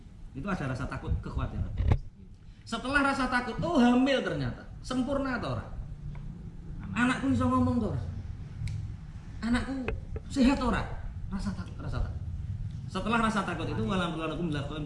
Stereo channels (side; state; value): both; identical; correlation 1.00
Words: Itu ada rasa takut, kekhawatiran. Setelah rasa takut, oh hamil ternyata. Sempurna to ora? Anakku iso ngomong to ora? Anakku sehat to ora? Rasa takut. Setelah rasa takut itu walam lakum lakum